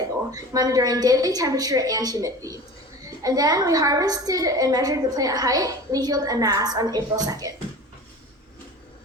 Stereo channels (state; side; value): normal; both; correlation 0.36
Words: monitoring daily temperature and humidity. And then we harvested and measured the plant height, leaf yield, and mass on April 2nd.